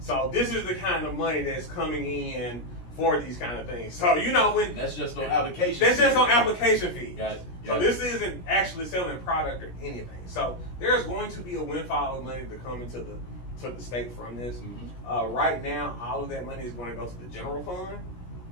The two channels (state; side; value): late; right; 17 ms